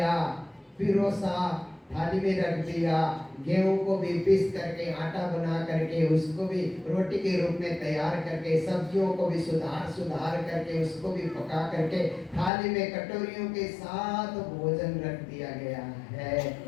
पिरोसा, थाली में रख दिया। गेहूं को भी पीस करके आटा बना करके उसको भी रोटी के रूप में तैयार करके, सब्जियों को भी सुधार करके उसको भी पका करके थाली में कटोरियों के साथ भोजन रख दिया गया है।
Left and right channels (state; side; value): drops out; right; at 12.5 s